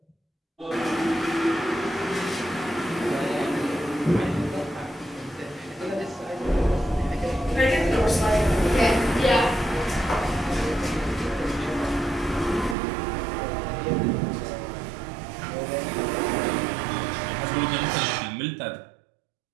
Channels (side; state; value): left; drops out; at 12.8 s